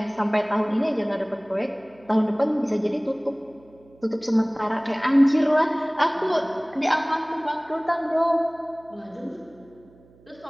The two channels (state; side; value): noise; right; hum, 28 dB below the sound